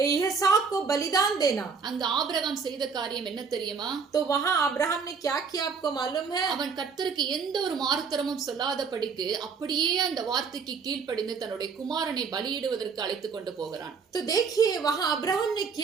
इसहाक को बलिदान देना। அங்கு ஆபிரகாம் செய்த காரியம் என்ன தெரியுமா? तो वहां अब्राहम ने क्या किया आपको मालूम है? அவன் கர்த்தருக்கு எந்த ஒரு மாறுத்தரமும் சொல்லாதபடிக்கு அப்படியே அந்த வார்த்தைக்கு கீழ்ப்படிந்து தன்னுடைய குமாரனை பலியிடுவதற்கு அழைத்து கொண்டு போகிறான். तो देखिए वहां अब्राहम ने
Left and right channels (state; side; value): quieter; left; 5.5 dB